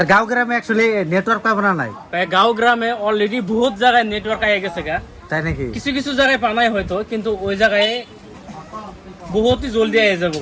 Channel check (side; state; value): both; identical; correlation 1.00